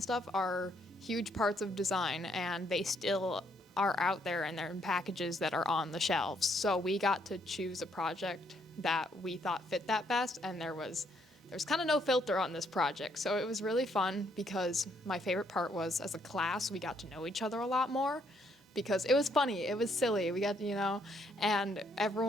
stuff, are huge parts of design, and they still are out there and they're in packages that are on the shelves. So we got to choose a project that we thought fit that best, and there's kind of no filter on this project. So it was really fun, because my favorite part was, as a class, we got to know each other a lot more, because it was funny, it was silly, we got and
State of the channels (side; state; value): both; normal; correlation 0.71